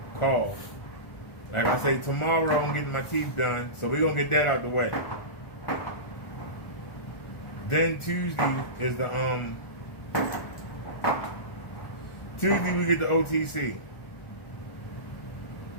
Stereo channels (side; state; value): right; late; 1.4 ms